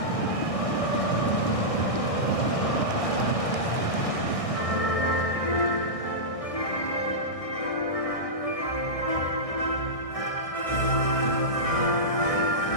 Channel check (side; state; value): right; late; 1.6 ms